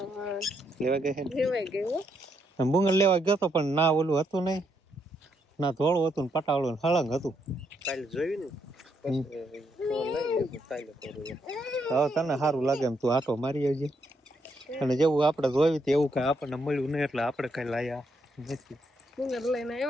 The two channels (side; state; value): both; normal; correlation 0.77